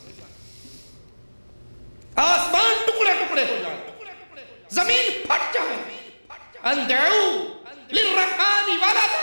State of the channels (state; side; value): inverted; both; correlation -1.00